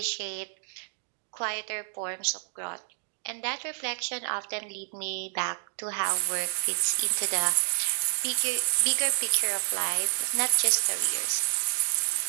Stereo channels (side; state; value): left; silent; 59 dB below the other